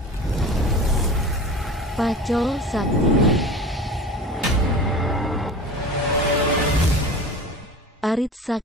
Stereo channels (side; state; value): both; normal; correlation 0.35